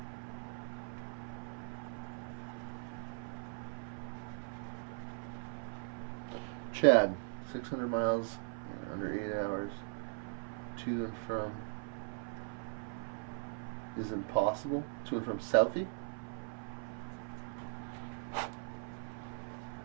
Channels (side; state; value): left; silent; 52 dB below the other